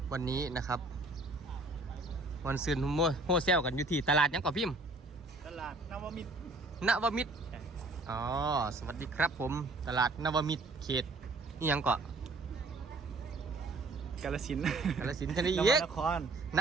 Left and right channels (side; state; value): left; quieter; 3.0 dB